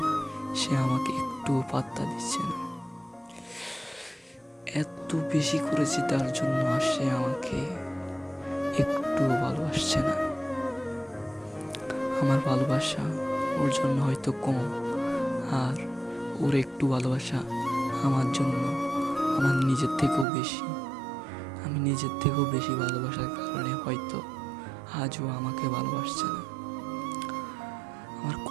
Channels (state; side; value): drops out; left; at 20.2 s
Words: সে আমাকে একটুও পাত্তা দিচ্ছে না। এত বেশি করেছি তার জন্য, আর সে আমাকে একটুও ভালোবাসছে না। আমার ভালোবাসা ওর জন্য হয়তো কম, আর ওর একটু ভালোবাসা আমার জন্য আমার নিজের থেকেও বেশি। আমি নিজের থেকেও বেশি ভালোবাসার কারণে হয়তো আজও আমাকে ভালোবাসছে না। আমার